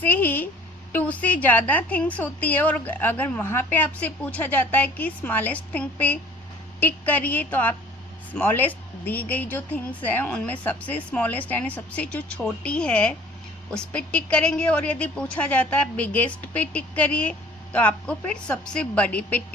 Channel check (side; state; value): both; normal; correlation 0.51